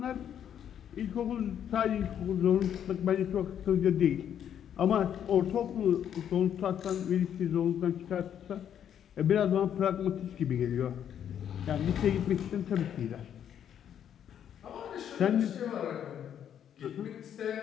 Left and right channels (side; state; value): right; quieter; 9.4 dB